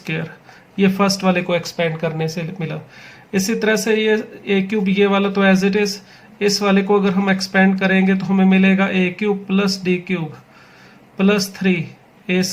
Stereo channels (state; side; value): identical; both; correlation 1.00